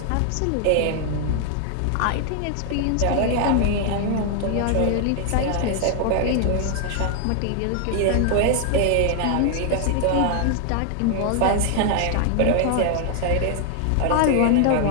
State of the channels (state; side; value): different; both; correlation 0.00